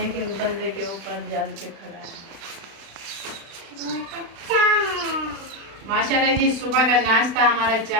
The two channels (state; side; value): late; left; 36 ms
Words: एक बंदे के ऊपर जल के खड़ा है। माशाल्लाह जी, सुबह का नाश्ता हमारा